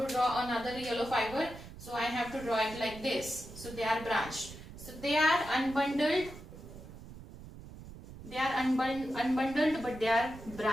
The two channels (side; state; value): right; noise; rumble, 15 dB below the sound